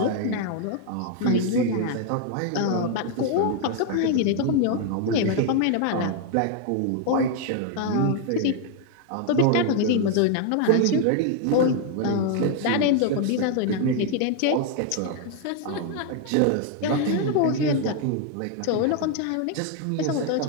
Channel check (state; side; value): different; both; correlation 0.00